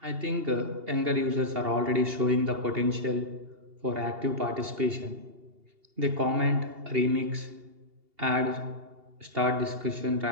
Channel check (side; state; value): left; late; 2.8 ms